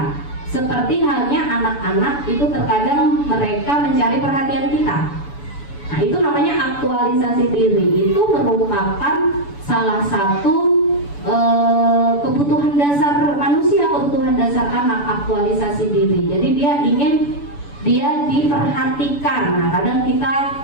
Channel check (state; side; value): late; right; 7.0 ms